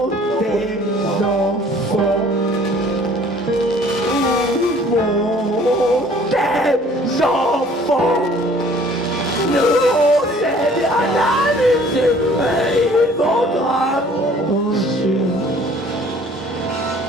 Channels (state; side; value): normal; both; correlation 0.54